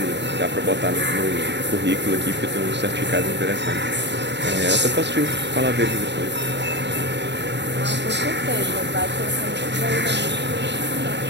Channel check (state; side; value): late; left; 0.51 ms